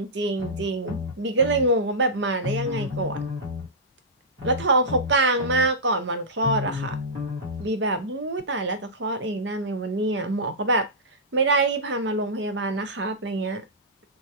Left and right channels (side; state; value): both; normal; correlation -0.15